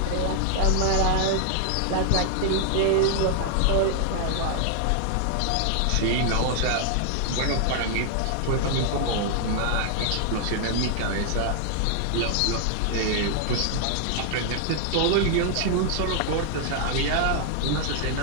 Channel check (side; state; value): both; different; correlation 0.00